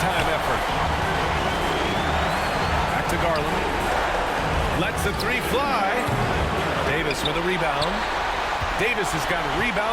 time effort. Back to Garland. Lets the three fly. Davis with a rebound. Davis has got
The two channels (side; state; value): both; identical; correlation 1.00